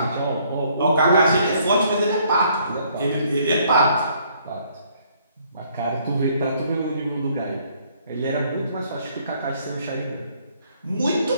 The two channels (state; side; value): inverted; both; correlation -0.65